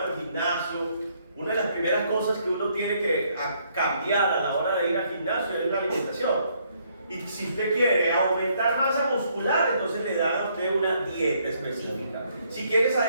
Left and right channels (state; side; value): inverted; both; correlation -0.70